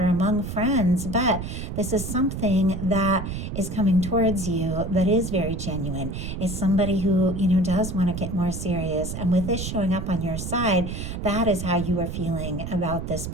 among friends. But this is something that is coming towards you that is very genuine. It's somebody who, does want to get more serious. And with this showing up on your side, that is how you are feeling about this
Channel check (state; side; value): noise; right; rumble, 6 dB below the sound